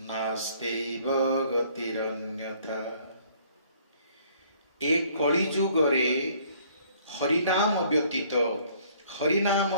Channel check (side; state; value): both; inverted; correlation -0.60